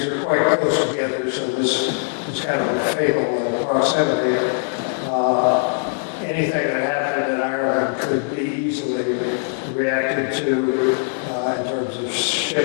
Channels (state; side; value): silent; right; 58 dB below the other